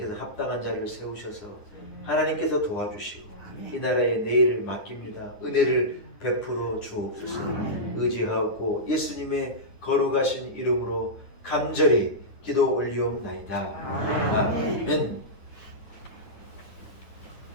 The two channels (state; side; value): late; right; 9.8 ms